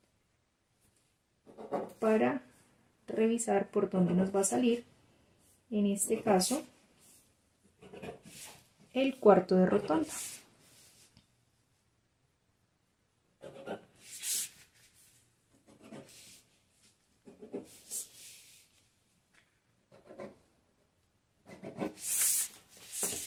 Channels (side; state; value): both; identical; correlation 1.00